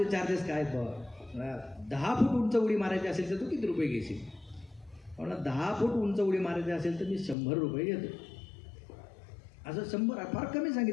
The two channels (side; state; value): right; drops out; at 7.4 s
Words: चार्जेस काय? 10 फूट उंच उडी मारायची असेल तर तू किती रुपये घेशील? म्हणला 10 फूट उंच उडी मारायची असेल तर मी 100 रुपये घेतो. असं 100 फार कमी